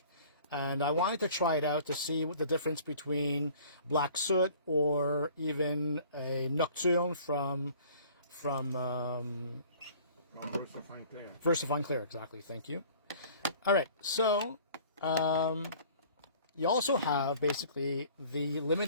And I wanted to try it out to see what the difference between Black Soot or even a Nocturne from Versafine Clear. Versafine Clear, exactly. Thank you. All right, so you also have basically the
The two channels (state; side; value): inverted; both; correlation -0.50